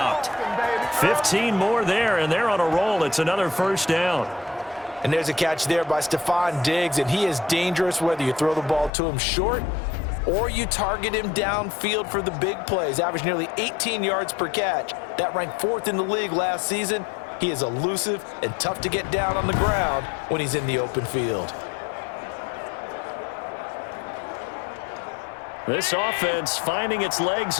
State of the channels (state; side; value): drops out; right; at 8.9 s